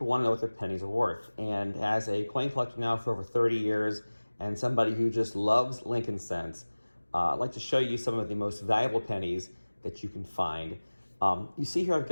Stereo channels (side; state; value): both; inverted; correlation -1.00